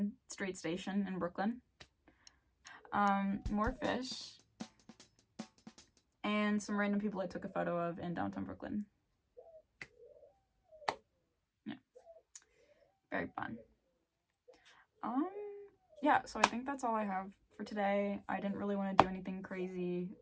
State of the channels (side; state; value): both; identical; correlation 1.00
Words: Street Station in Brooklyn. More fish. And some random people I took a photo of in downtown Brooklyn. Yeah. Very fun. Yeah, so I think that's all I have for today. I didn't really want to do anything crazy.